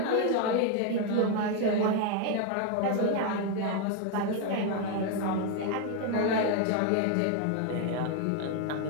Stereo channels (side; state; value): both; different; correlation 0.01